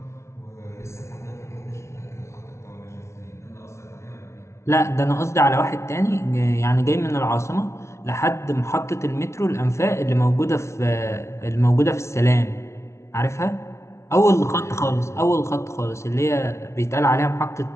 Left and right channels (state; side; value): late; right; 0.13 ms